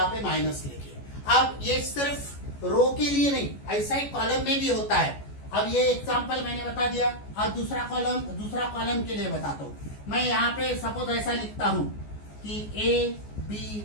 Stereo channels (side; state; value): right; late; 14 ms